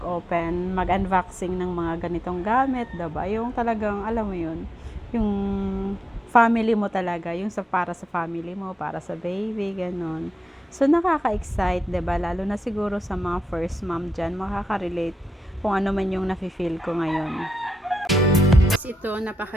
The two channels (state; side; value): normal; both; correlation 0.88